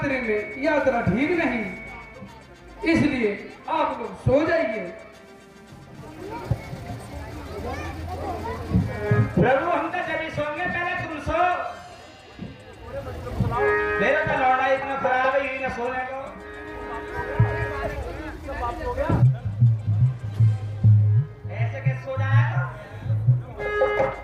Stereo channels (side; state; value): both; identical; correlation 1.00